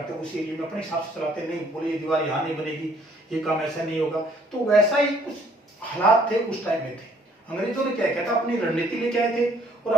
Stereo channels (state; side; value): normal; both; correlation 0.62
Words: हैं उसी एरिया में अपने हिसाब से चलाते हैं। नहीं, बोले ये दीवार यहाँ नहीं बनेगी, ये काम ऐसा नहीं होगा। तो वैसा ही कुछ हालात थे उस टाइम में थे। अंग्रेजों ने क्या किया था, अपनी रणनीति लेके आए थे, और